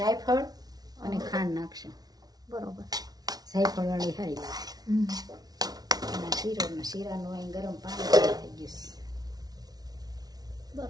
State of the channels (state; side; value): late; left; 0.19 ms